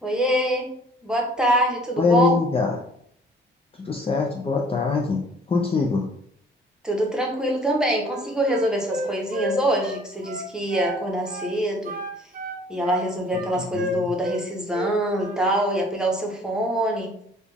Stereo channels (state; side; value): normal; both; correlation 0.55